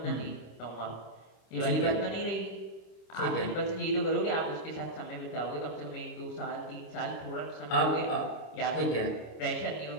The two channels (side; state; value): right; late; 26 ms